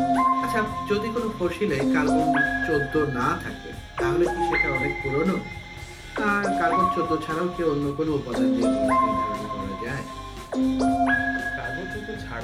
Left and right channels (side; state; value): both; identical; correlation 1.00